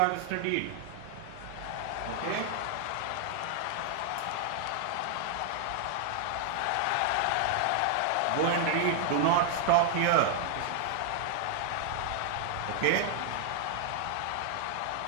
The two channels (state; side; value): different; both; correlation 0.00